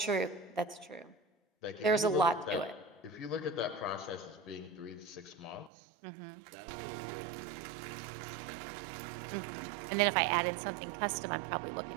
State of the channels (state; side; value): drops out; left; at 5.7 s